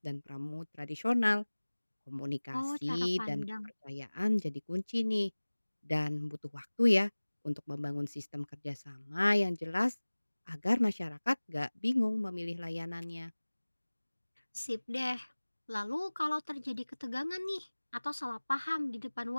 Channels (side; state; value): both; inverted; correlation -1.00